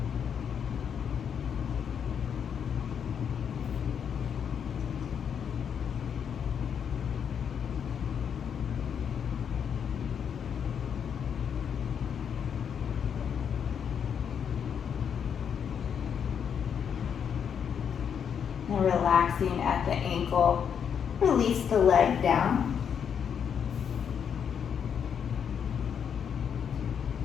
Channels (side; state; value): right; quieter; 7.7 dB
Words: And relaxing at the ankle. Release the leg down.